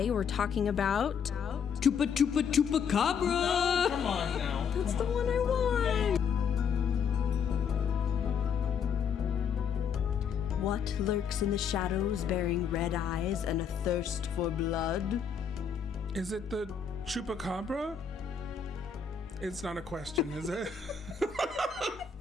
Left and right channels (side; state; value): right; quieter; 6.8 dB